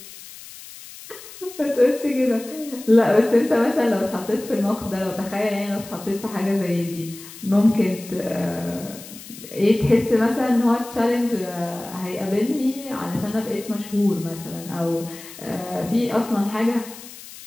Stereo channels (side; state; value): left; noise; hiss, 16 dB below the sound